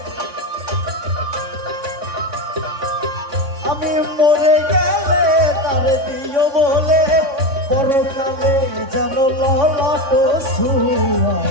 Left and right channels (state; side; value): late; left; 3.6 ms